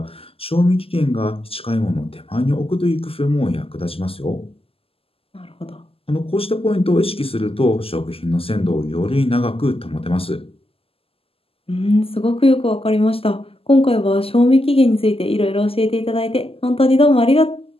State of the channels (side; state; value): right; late; 0.28 ms